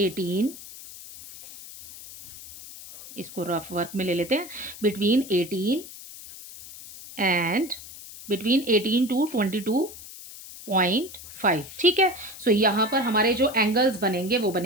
इसको रफ वर्क में ले लेते हैं, बिटवीन 18 एंड बिटवीन 18 टू 22.5, ठीक है। सो यहाँ पर हमारे जो एंगल्स बनेंगे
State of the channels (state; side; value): noise; left; hiss, 15 dB below the sound